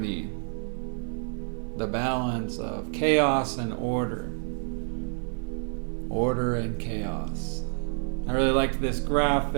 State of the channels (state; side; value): silent; left; 56 dB below the other